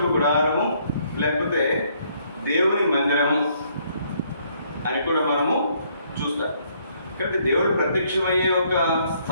గుడారము లేకపోతే దేవుని మందిరము అని కూడా మనము చూస్తాం. కాబట్టి దేవుడు ప్రత్యక్షమయ్యే ఒక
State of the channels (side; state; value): both; inverted; correlation -0.67